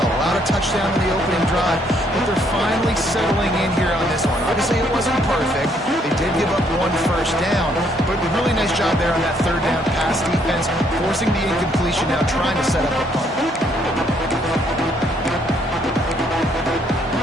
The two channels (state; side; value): normal; both; correlation 0.68